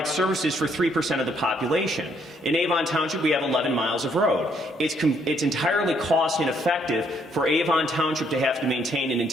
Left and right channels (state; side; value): normal; both; correlation 0.69